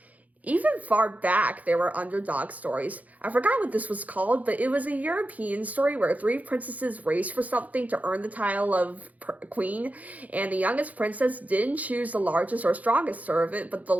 Even far back, there were underdog stories. I forgot what this was called, but it was a European story where three princesses raced for something to earn the title of queen, and the youngest princess didn't choose the largest or strongest servant, but the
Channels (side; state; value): left; late; 0.075 ms